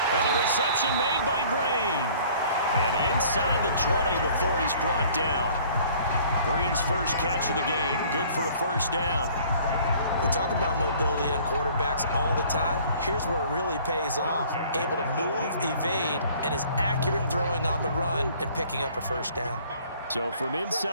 And the reception made by Green. And inside the 20 before he's brought down. Green's first catch of the game. Good for a 1st down. We talk about mobility on quarterbacks all the time. Here's where it really pays off. Able to move, evade, and is accurate throwing on the run and picking up a 1st down. So from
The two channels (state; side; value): inverted; both; correlation -0.54